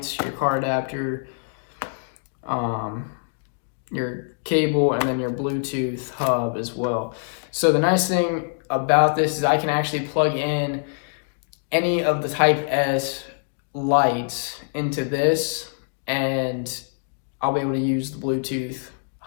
your car adapter, your cable, and then your Bluetooth hub as well. So the nice thing about this is I can actually plug in any of the Type S lights into this, and I'll be able to use the Bluetooth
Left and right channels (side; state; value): right; silent; digital silence